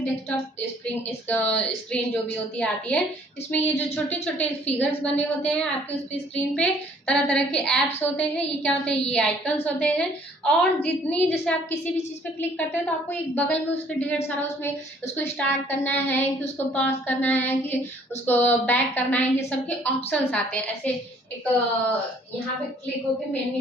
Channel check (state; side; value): normal; both; correlation 0.59